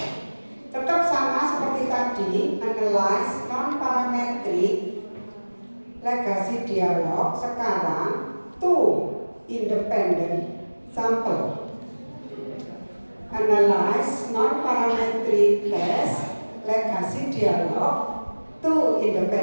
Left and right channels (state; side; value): inverted; both; correlation -1.00